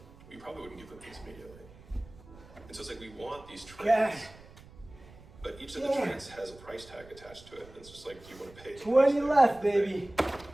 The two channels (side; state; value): right; noise; rumble, 21 dB below the sound